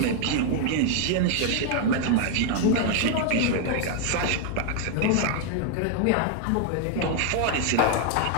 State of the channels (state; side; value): different; both; correlation 0.00